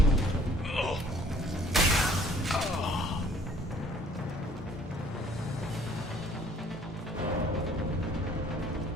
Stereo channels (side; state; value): both; normal; correlation 0.57